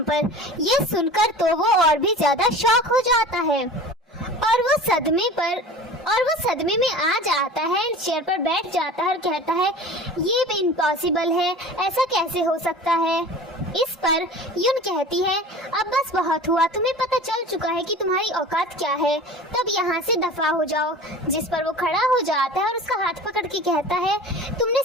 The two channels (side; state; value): both; normal; correlation 0.39